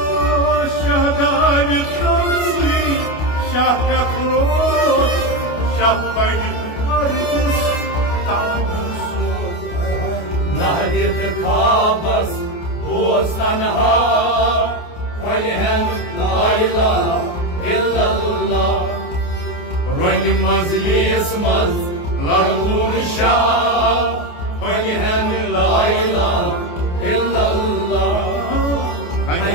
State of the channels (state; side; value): late; right; 28 ms